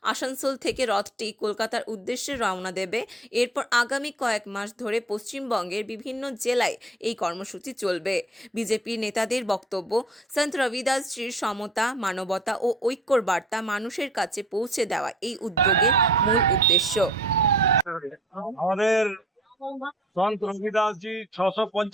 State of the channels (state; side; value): normal; both; correlation 0.53